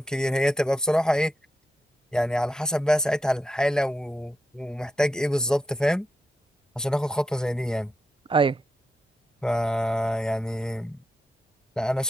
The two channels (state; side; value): normal; both; correlation 0.87